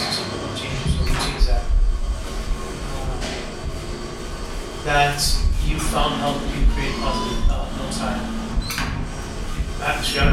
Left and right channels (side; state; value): both; identical; correlation 1.00